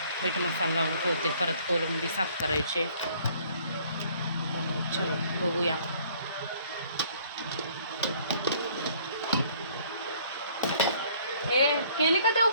मीठ मसाला लावून ठेवते. परत कोलंबी साफ करायचे. चलो बघूया. ए केली का देव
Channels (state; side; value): inverted; both; correlation -0.59